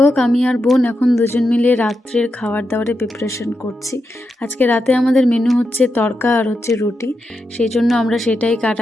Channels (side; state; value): both; normal; correlation 0.86